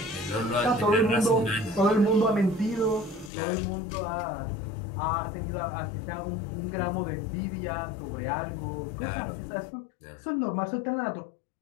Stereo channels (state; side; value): drops out; right; at 3.3 s